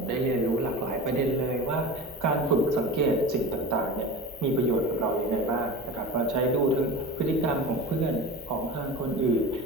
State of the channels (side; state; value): both; normal; correlation 0.32